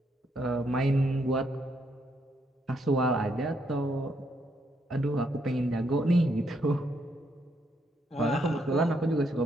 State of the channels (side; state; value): both; normal; correlation 0.75